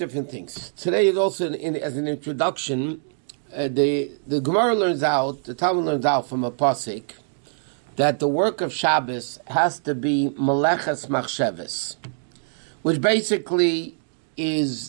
things. Today is also, as an introduction, the Gemara learns out, the Talmud learns out from a pasuk, that the work of Shabbos has to be meleches machsheves, which basically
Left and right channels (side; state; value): left; silent; digital silence